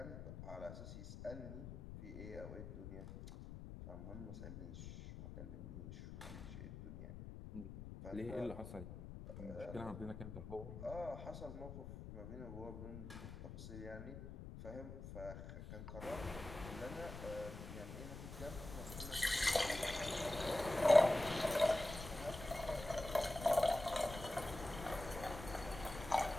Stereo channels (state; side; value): noise; left; rumble, 10 dB below the sound